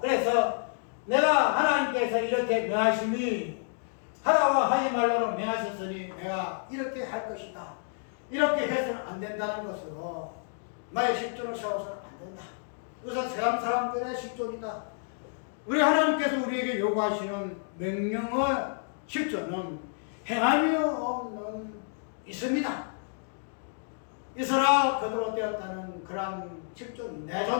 내가 하나님께서 이렇게 명하시니 하라고 하지 말라고 명하셨으니 내가 이렇게 할 것이다. 이렇게 해서는 안 된다는 것으로 나의 실존을 세워서는 안 된다. 이것은 세상 사람들의 실존이다. 우리 하나님께서 우리에게 요구하시는 명령의 실존은 행함이 없는 있음이다. 있어라 그대로 되었다는 그러한 실존이 내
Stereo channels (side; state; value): right; silent; digital silence